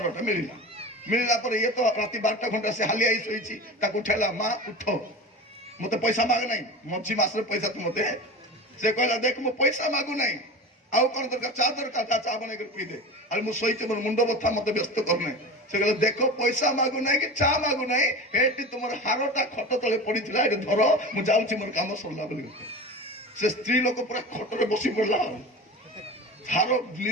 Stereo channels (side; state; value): both; normal; correlation 0.30